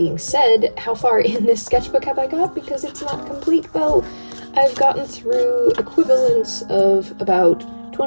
said, how far in this sketchbook have I got? Because it's not complete. Well, I've gotten through equivalents of about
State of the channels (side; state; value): both; inverted; correlation -1.00